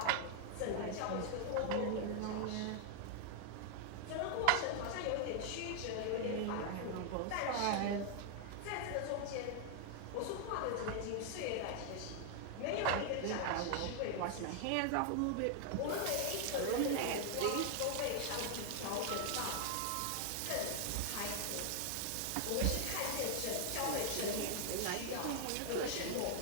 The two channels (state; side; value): different; both; correlation 0.00